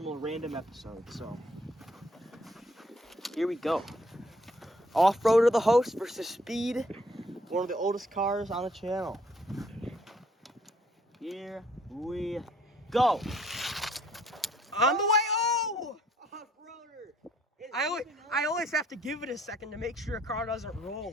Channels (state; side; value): normal; both; correlation 0.64